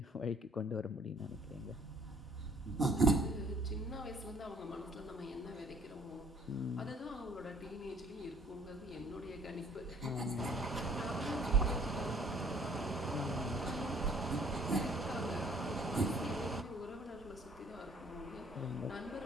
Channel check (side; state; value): both; normal; correlation 0.57